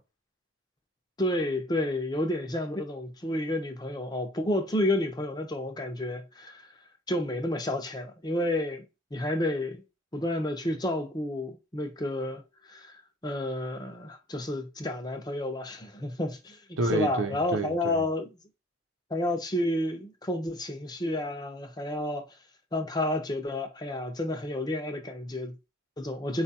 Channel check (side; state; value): both; normal; correlation 0.53